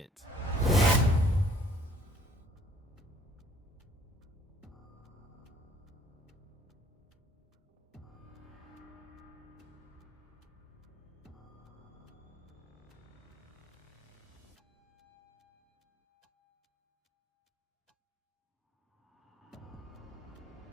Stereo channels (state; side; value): normal; both; correlation 0.58